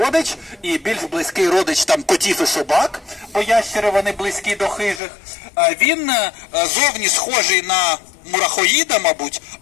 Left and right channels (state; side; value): drops out; right; at 5.0 s